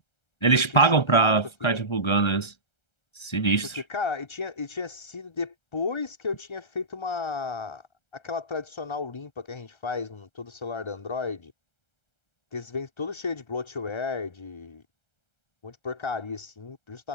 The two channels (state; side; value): late; right; 1.3 ms